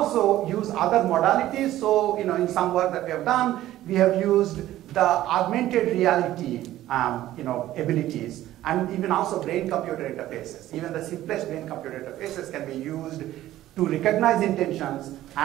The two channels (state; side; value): quieter; left; 14.2 dB